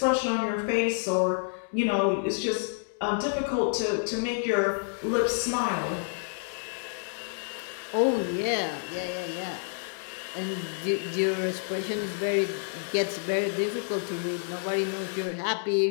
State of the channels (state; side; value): silent; right; 59 dB below the other